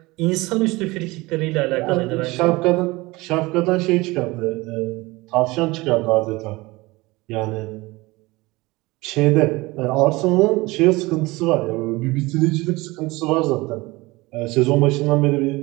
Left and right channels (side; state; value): left; quieter; 21.9 dB